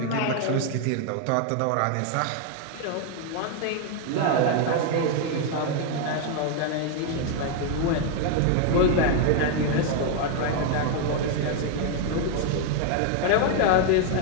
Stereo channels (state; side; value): different; both; correlation 0.00